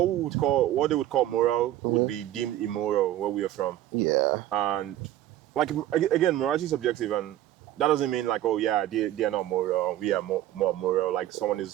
they would call moral would be deemed immoral where we are from. yeah. And, like, again, morality is subjective, and that doesn't mean, like, oh yeah, they are not moral, we are more moral, like someone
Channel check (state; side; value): quieter; left; 13.3 dB